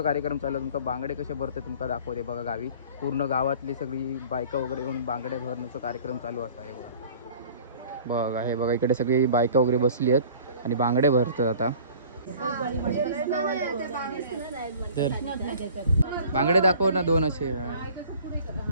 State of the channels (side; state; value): both; inverted; correlation -0.47